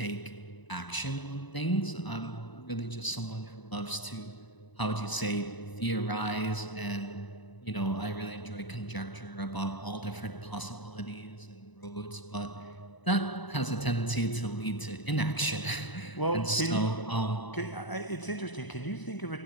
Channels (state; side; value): late; right; 1.0 ms